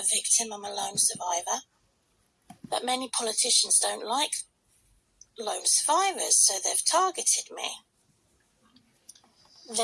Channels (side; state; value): both; identical; correlation 1.00